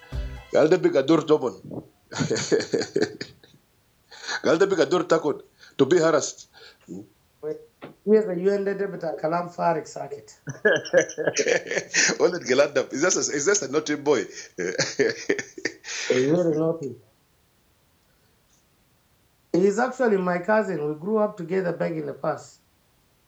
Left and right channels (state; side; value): identical; both; correlation 1.00